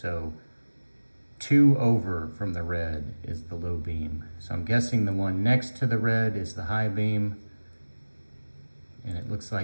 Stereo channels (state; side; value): inverted; both; correlation -1.00